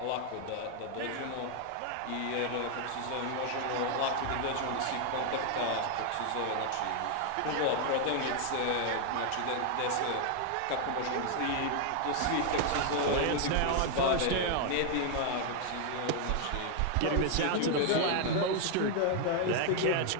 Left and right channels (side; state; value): both; different; correlation 0.00